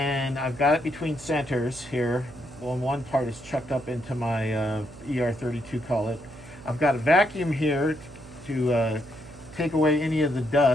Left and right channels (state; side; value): noise; right; hum, 18 dB below the sound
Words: I've got it between centers here. Well, one part is chucked up into my ER32, call it. I've got a vacuum here to take away any of the